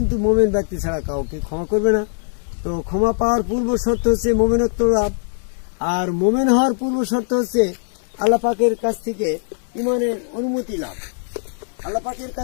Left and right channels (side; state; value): right; silent; 65 dB below the other